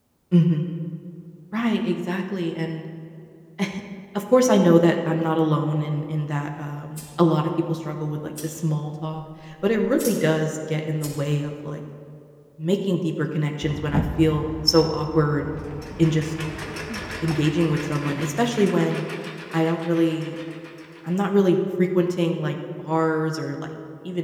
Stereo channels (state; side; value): identical; both; correlation 1.00